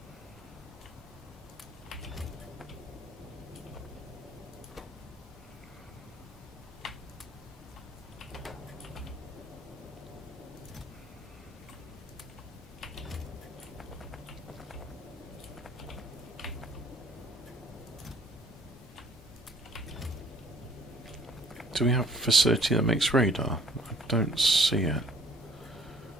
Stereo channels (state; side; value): normal; both; correlation 0.55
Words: Do we have a facility that makes radar? I don't see it.